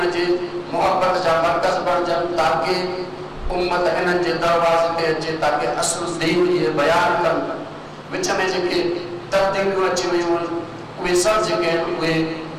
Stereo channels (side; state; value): both; identical; correlation 1.00